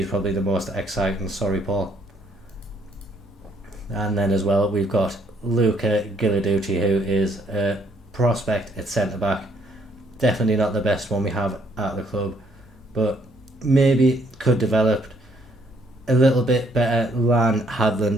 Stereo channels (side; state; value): both; normal; correlation 0.68